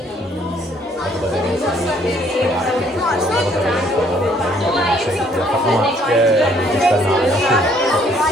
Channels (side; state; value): both; normal; correlation 0.63